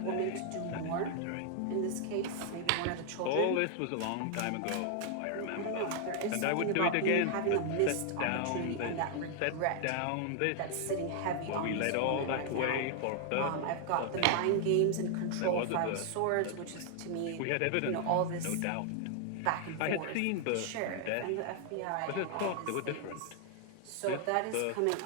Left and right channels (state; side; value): different; both; correlation 0.00